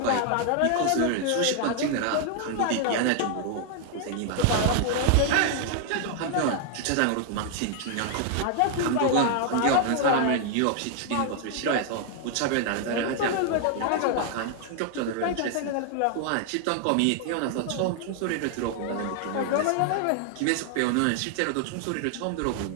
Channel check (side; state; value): both; different; correlation 0.00